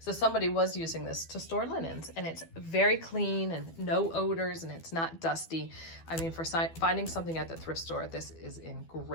somebody was using this to store linens, and it's very clean and no odors, and it's not dusty. I mean, for finding something at the thrift store, this is in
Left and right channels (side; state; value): right; late; 12 ms